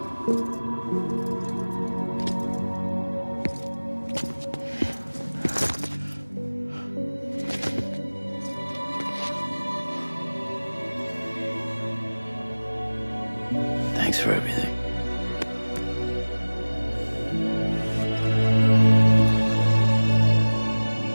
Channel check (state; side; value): inverted; both; correlation -1.00